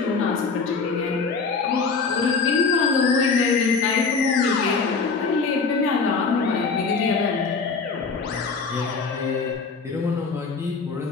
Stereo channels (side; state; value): right; quieter; 4.8 dB